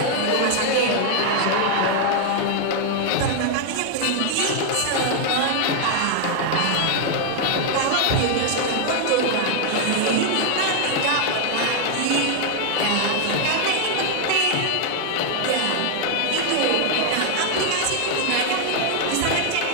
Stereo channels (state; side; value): different; both; correlation 0.00